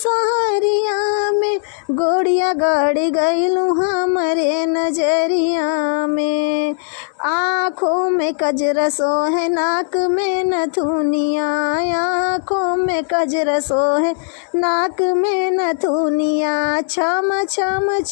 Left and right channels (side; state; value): right; silent; digital silence